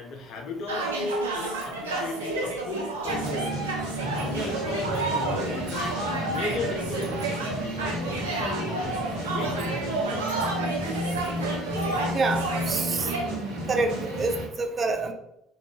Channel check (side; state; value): both; normal; correlation 0.42